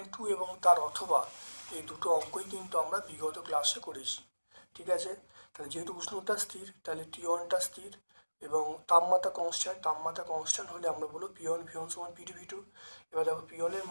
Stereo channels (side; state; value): both; inverted; correlation -1.00